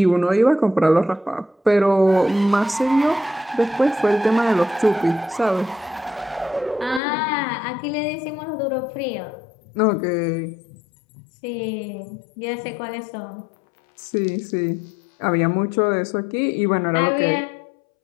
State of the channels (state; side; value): drops out; right; at 7.0 s